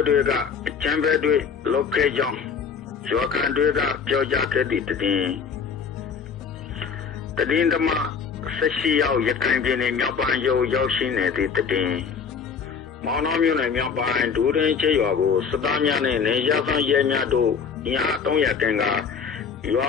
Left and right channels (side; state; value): right; quieter; 6.2 dB